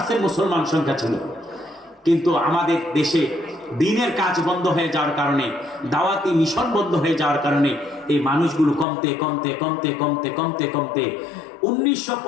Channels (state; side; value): drops out; right; at 8.8 s